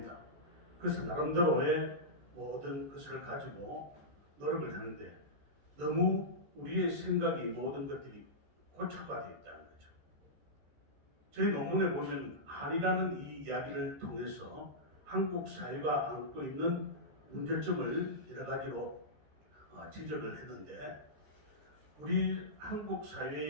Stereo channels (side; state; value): left; late; 14 ms